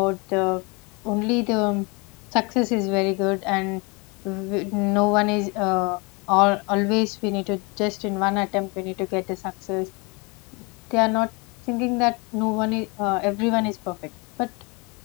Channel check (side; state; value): right; quieter; 29.5 dB